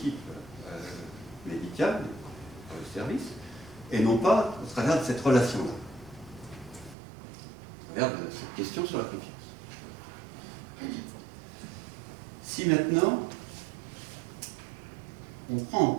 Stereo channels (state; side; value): drops out; left; at 7.0 s